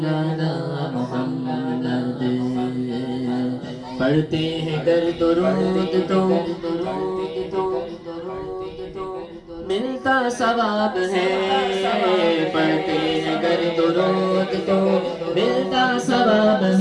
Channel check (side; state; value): both; identical; correlation 1.00